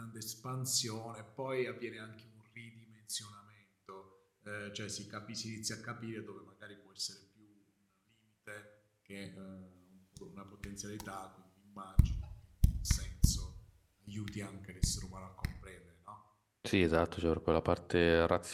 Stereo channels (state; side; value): identical; both; correlation 1.00